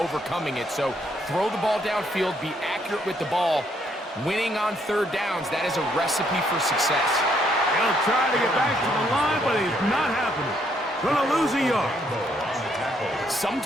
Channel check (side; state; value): both; normal; correlation 0.71